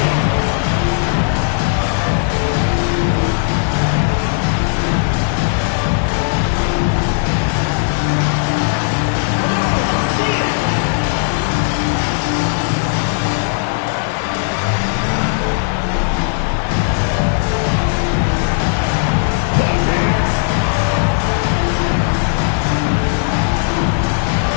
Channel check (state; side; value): silent; right; 61 dB below the other